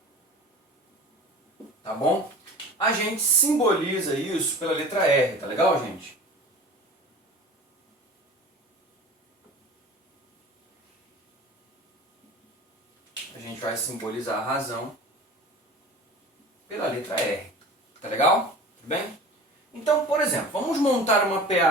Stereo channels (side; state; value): both; normal; correlation 0.39